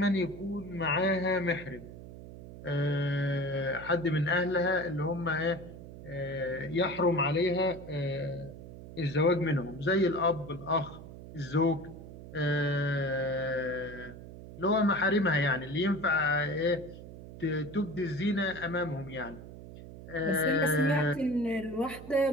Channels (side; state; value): right; noise; hum, 14 dB below the sound